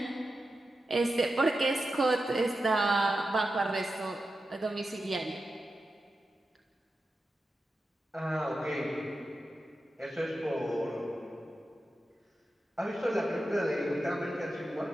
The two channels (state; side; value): normal; both; correlation 0.91